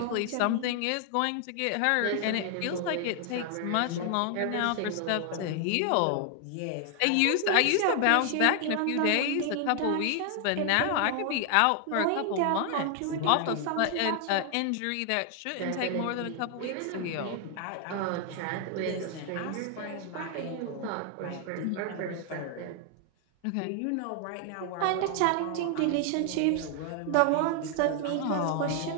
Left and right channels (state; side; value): different; both; correlation 0.00